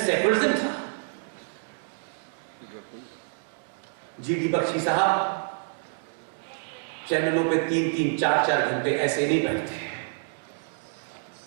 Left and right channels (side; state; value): left; silent; digital silence